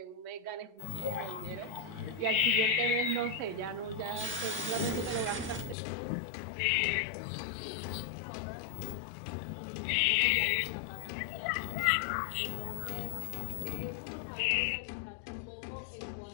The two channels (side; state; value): right; drops out; at 5.8 s